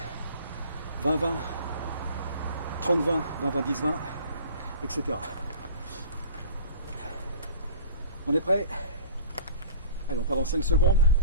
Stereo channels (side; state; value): both; inverted; correlation -0.43